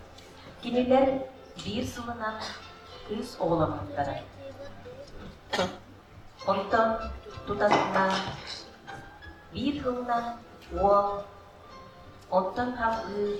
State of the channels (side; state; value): both; identical; correlation 1.00